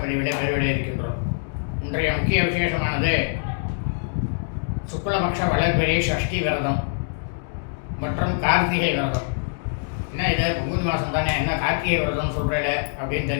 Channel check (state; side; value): silent; right; digital silence